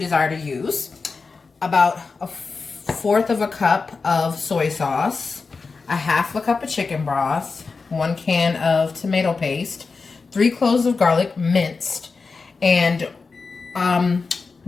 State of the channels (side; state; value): right; quieter; 4.5 dB